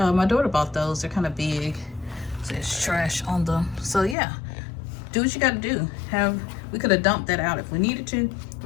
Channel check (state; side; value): drops out; right; at 4.2 s